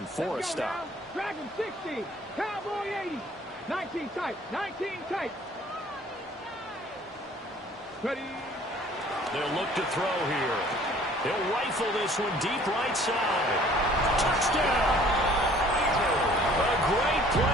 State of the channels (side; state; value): both; normal; correlation 0.54